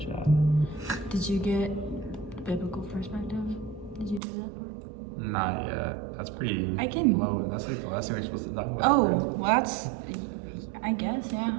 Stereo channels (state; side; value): drops out; left; at 4.2 s